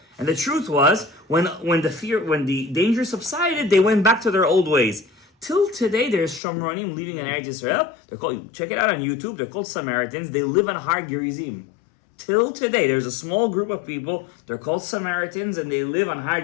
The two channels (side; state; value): right; drops out; at 6.4 s